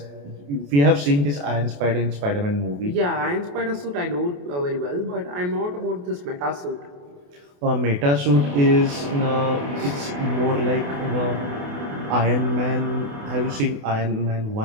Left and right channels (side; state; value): left; late; 28 ms